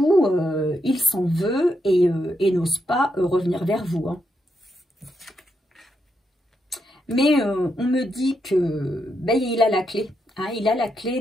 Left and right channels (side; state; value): both; normal; correlation 0.81